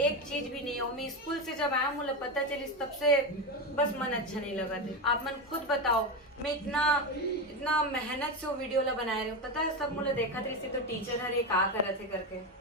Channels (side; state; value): both; normal; correlation 0.15